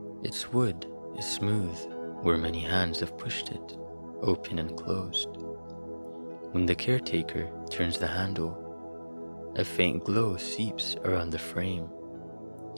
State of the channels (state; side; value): inverted; both; correlation -1.00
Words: Its wood is smooth where many hands have pushed it, open and closed. When the caretaker turns the handle, a faint glow seeps around the frame.